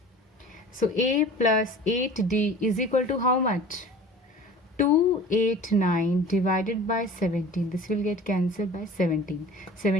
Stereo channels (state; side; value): normal; both; correlation 0.42